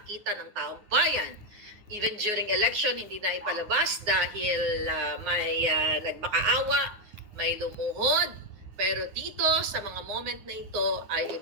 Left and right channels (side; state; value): left; late; 9.6 ms